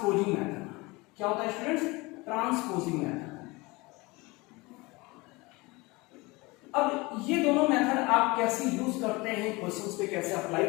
मेथड। क्या होता है स्टूडेंट्स? Transposing method. अब ये दोनों मेथड आप कैसे यूज करते हैं, क्वेश्चंस पे कैसे अप्लाई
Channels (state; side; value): quieter; right; 23.8 dB